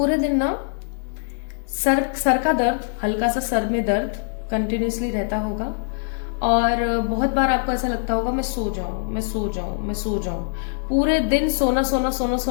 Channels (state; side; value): silent; right; digital silence